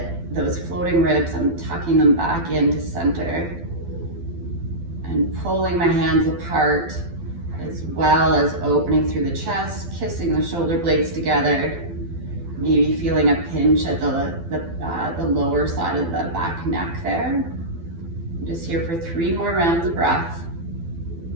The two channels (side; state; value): left; late; 12 ms